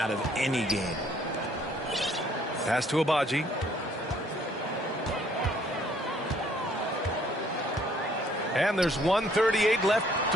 of any game. Pass to Agbaji. And there's 1:38 left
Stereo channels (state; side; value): normal; both; correlation 0.62